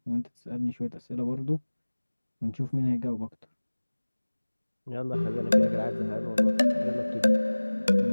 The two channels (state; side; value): inverted; both; correlation -1.00